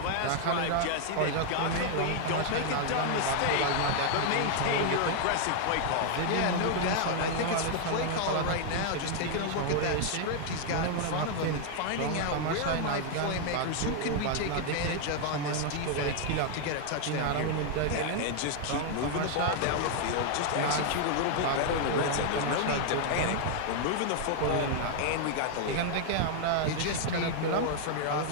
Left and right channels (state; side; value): different; both; correlation 0.00